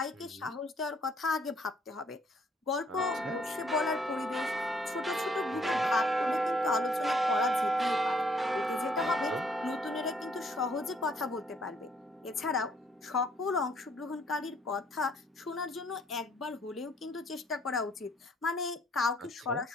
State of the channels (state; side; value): normal; both; correlation 0.65